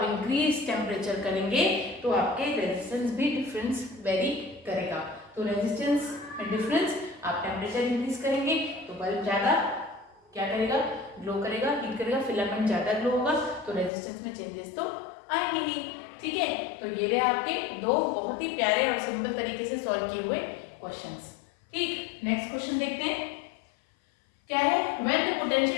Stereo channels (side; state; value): right; drops out; at 13.9 s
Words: इंक्रीज टेम्परेचर करेंगे तो आपके रेजिस्टेंस भी डिफरेंस वेरी करेगा। तो रेजिस्टेंस में डिफरेंस, आप टेम्परेचर इंक्रीज करेंगे तो बल्ब ज्यादा क्या करेगा, ग्लो करेगा, हीट करेगा, फिलामेंट ज्यादा ग्लो होगा, तो रेजिस्टेंस में चेंजेस तो आएंगे ही। ठीक है, तो ये रहे आपके दो बहुत ही प्यारे और सिंपल तरीके से सॉल्व किए हुए क्वेश्चंस। ठीक, नेक्स्ट क्वेश्चन देखते हैं क्या है। When the